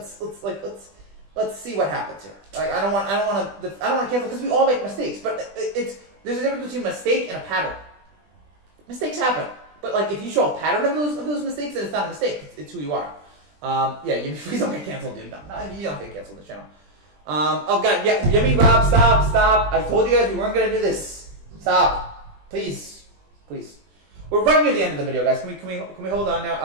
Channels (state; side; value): late; left; 20 ms